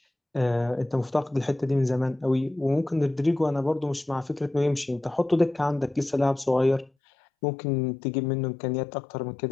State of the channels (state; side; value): drops out; right; at 6.9 s